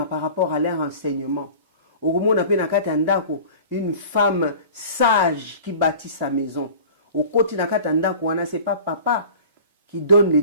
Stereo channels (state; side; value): inverted; both; correlation -0.41